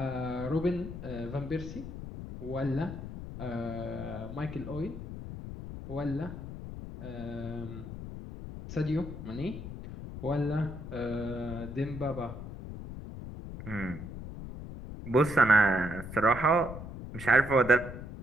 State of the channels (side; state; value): left; noise; rumble, 10 dB below the sound